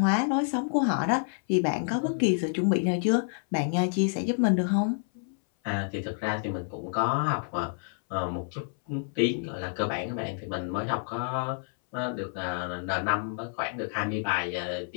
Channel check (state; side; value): silent; right; 59 dB below the other